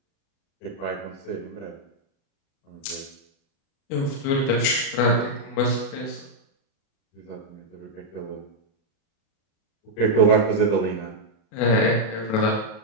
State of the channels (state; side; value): late; right; 36 ms